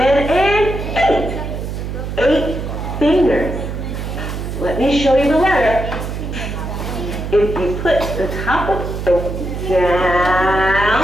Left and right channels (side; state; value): right; noise; hum, 5 dB below the sound